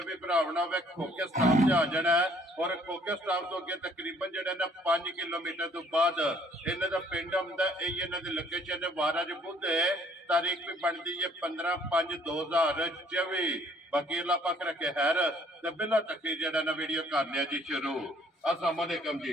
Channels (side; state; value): both; normal; correlation 0.61